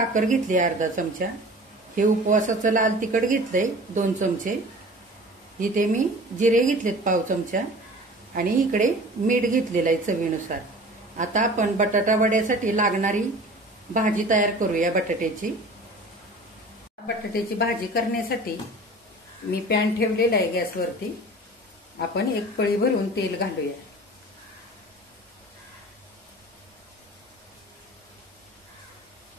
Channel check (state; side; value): normal; both; correlation 0.41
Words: घेतली अर्धा चमचा. हे उपवासाचं लाल तिखट घेतलंय 2 चमचे. इथे मी जिरे घेतलेत पाव चमचा आणि इकडे मीठ घेतलेलं आहे चवीनुसार. आता आपण बटाटा वड्यासाठी लागणारी भाजी तयार करूया बटाट्याची. बटाट्याची भाजी करण्यासाठी मी पॅन ठेवलेला आहे गॅसवरती. आपण 1 पळी भरून तेल घालूया.